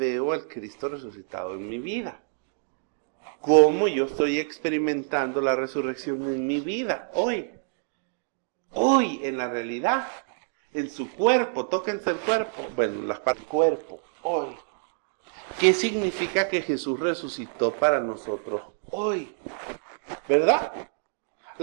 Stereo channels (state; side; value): silent; left; digital silence